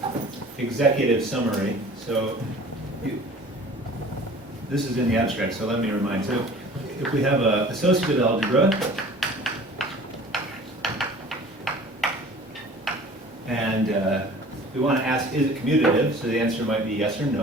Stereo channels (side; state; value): both; normal; correlation 0.45